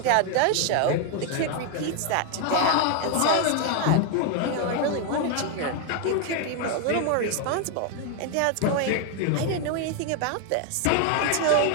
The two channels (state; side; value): different; both; correlation 0.01